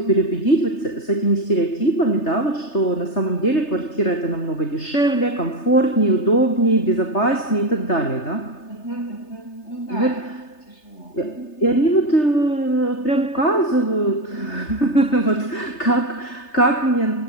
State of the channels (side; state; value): right; late; 3.3 ms